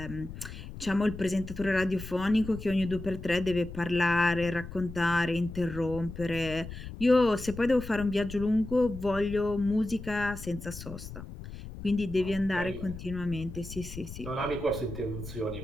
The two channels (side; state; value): left; noise; rumble, 11 dB below the sound